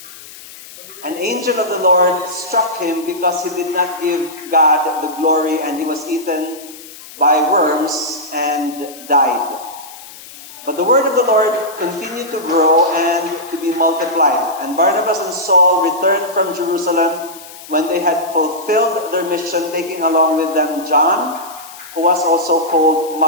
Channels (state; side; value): noise; left; hiss, 17 dB below the sound